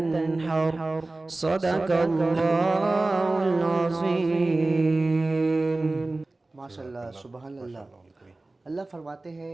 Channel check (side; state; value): left; quieter; 3.0 dB